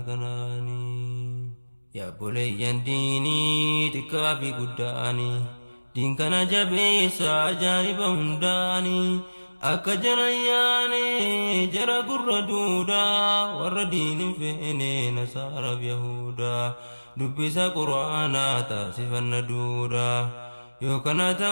kanaanii yaa boleeyyan diinii xiqqaa fi guddaanii diin kana jabeessa ajaa'iba hundaanii akka jara yaane jara gurra duudaa warra diinin feene nasaaraaf yahudaa dubbisa quraanaa taasifanna duudaa yoo kana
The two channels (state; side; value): inverted; both; correlation -1.00